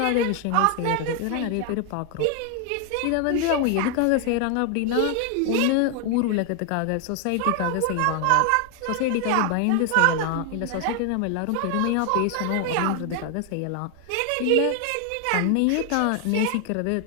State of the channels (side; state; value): both; different; correlation 0.00